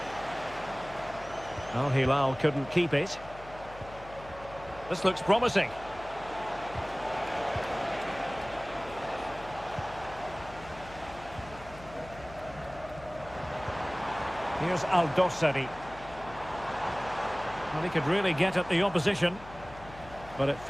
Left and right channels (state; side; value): noise; left; hum, 17 dB below the sound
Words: Al Hilal couldn't keep it. This looks promising. Here's Al-Dossari. Well, he could really get at the opposition, but it